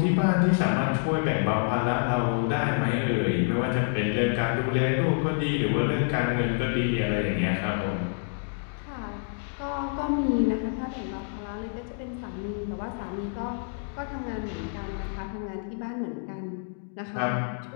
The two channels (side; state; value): right; silent; digital silence